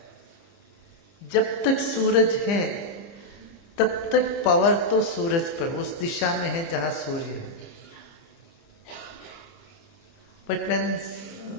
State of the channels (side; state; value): right; late; 30 ms